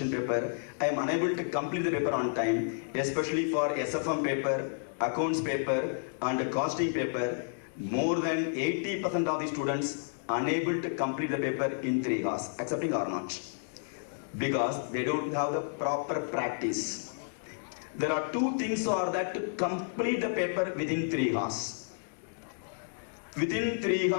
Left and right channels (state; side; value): silent; right; 57 dB below the other